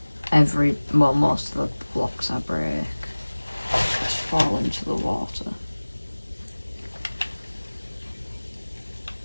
most of the blocks I break just fall into the water.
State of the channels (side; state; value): both; inverted; correlation -1.00